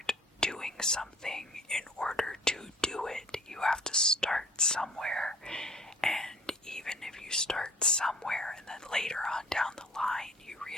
doing something in order to do it. You have to start somewhere, and even if you start somewhere and then later on down the line you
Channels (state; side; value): normal; both; correlation 0.51